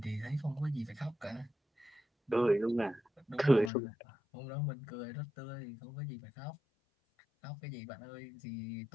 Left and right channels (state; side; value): drops out; right; at 3.7 s